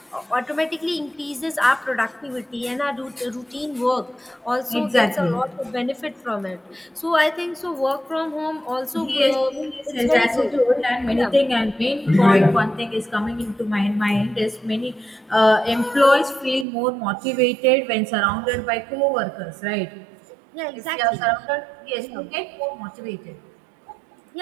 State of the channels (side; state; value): left; drops out; at 16.7 s